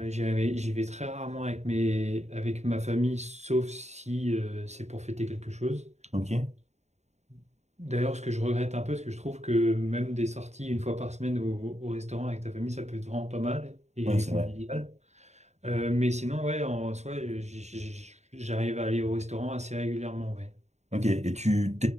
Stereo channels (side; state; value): left; late; 0.33 ms